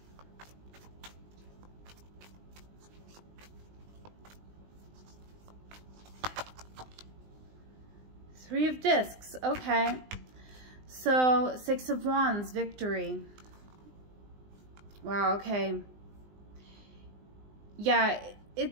Three of Discs, okay. So, Six of Wands, victory. Wow, okay. Yeah,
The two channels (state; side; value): late; left; 20 ms